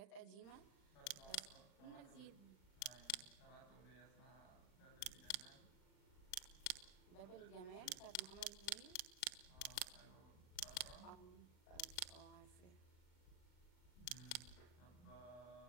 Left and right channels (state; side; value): late; right; 39 ms